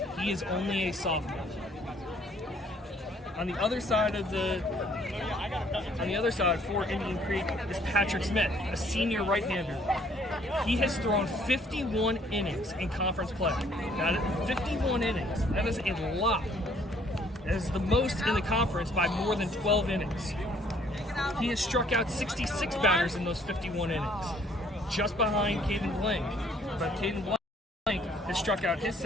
he is only a sophomore. On the other side for Indian Creek is Patrick Smith, a senior right-hander. He has thrown 51 innings in conference play. That is 51 innings. That is a lot. That is the most in the conference by more than 12 innings. He has struck out 66 batters in those 51 innings, just behind Caden Blank. But Caden Blank has struck out his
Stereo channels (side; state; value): both; normal; correlation 0.62